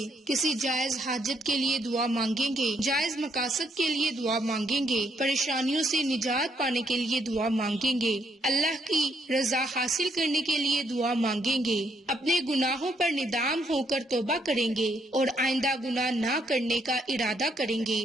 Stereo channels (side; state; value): both; normal; correlation 0.73